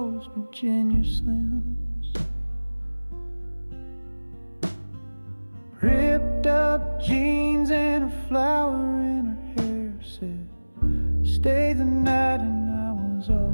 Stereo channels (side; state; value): both; inverted; correlation -1.00